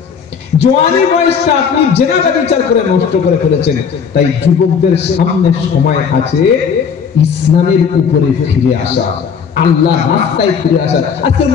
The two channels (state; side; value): quieter; right; 6.6 dB